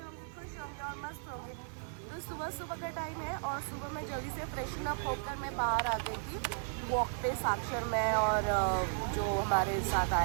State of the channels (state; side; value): silent; left; 54 dB below the other